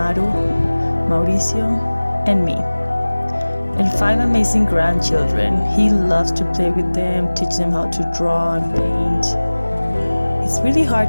Mauricio, and me. And 5 amazing grandchildren. He loves to play with them, teach them how to draw and paint. It's really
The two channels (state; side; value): inverted; both; correlation -1.00